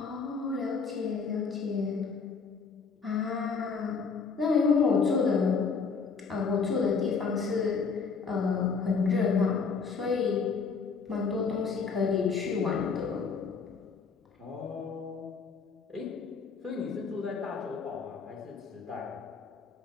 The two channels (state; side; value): quieter; right; 5.2 dB